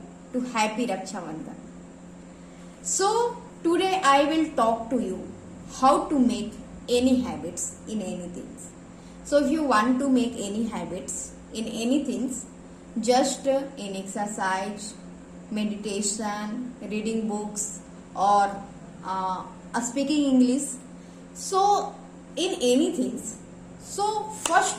to happy Raksha Bandhan. So today I will talk to you how to make any habits in anything. So if you want to make any habits in anything, just in exercise, meditation, reading books, or speaking English. So, in anything, so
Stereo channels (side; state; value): both; identical; correlation 1.00